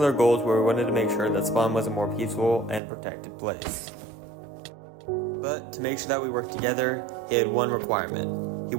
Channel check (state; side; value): drops out; left; at 2.8 s